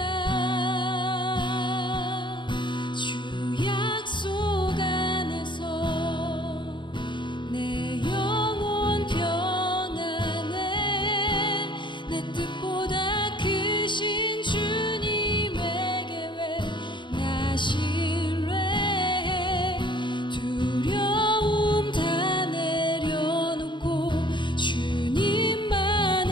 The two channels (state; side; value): late; right; 0.23 ms